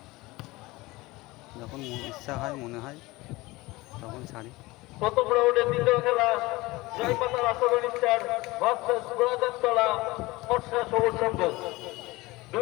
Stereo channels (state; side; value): quieter; right; 21.0 dB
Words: যখন ইচ্ছা হয়, মনে হয় তখন ছাড়ি। প্রথম রাউন্ডের দ্বিতীয় খেলা জয়পাতা রাষ্ট্রবাণী স্টার ভার্সেস গোলাজারতলা ফর্সা সবুজ সংঘ।